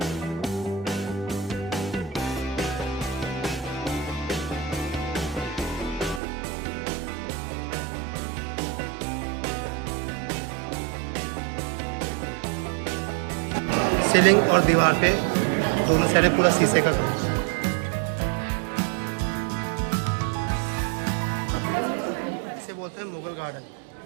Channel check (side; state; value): left; drops out; at 6.2 s